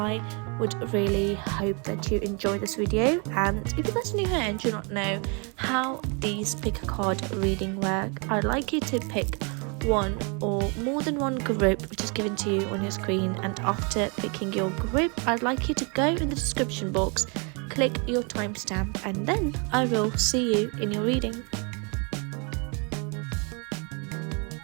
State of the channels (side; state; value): left; quieter; 34.4 dB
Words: would really hope that you enjoy this video. And if you're guys new here and do not know how these pick a card reading work, I'd like you to pick one or more than one group which is given to you on your screen, and after picking your group I'd like you to go in the description box, click your timestamp, and then I will see you in your reading.